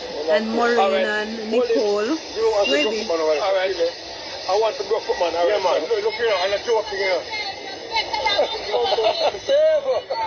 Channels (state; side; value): identical; both; correlation 1.00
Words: And Maureen and Nicole. Maybe. All right. I want the broke foot, man. All right, man. Look here, and a joke here.